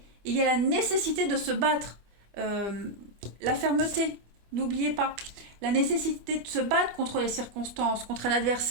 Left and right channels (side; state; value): left; late; 24 ms